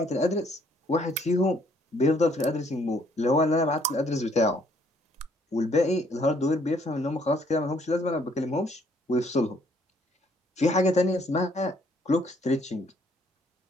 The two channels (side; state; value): both; normal; correlation 0.65